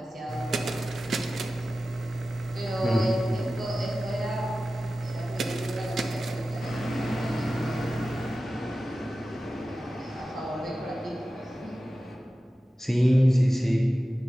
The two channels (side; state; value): both; normal; correlation 0.94